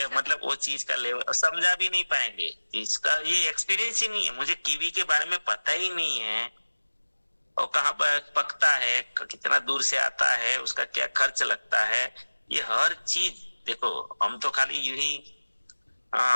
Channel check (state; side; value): inverted; both; correlation -1.00